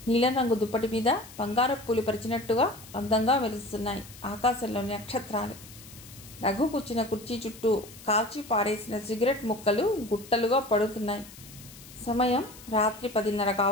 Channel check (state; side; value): noise; left; hiss, 18 dB below the sound